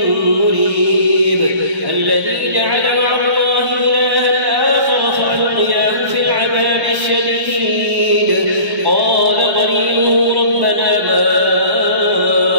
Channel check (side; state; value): left; late; 1.3 ms